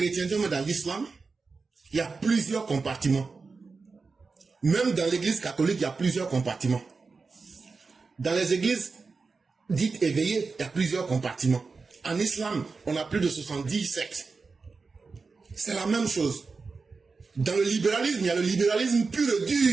mais dans l'islam, il y a plusieurs compartiments. Même dans l'église catholique, il y a plusieurs compartiments. Dans les églises dites éveillées, il y a plusieurs compartiments. En islam, on a plus de 70 sectes. C'est la même chose. Dans le libéralisme, il y a le libéralisme pur et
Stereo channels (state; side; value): quieter; left; 4.4 dB